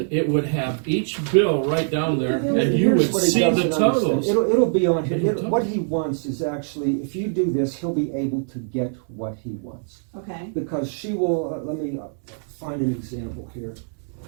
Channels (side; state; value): left; silent; digital silence